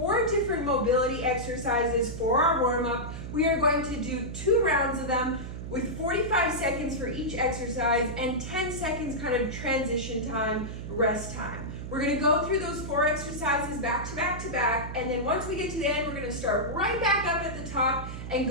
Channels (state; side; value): noise; right; hum, 8 dB below the sound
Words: different mobility exercises for our warm-up. We are going to do 2 rounds of them with 45 seconds for each exercise and 10 seconds kind of transition time, rest time. We're going to go through those 4 exercises back to back to back, and then once we get to the end, we're going to start right back up at the top and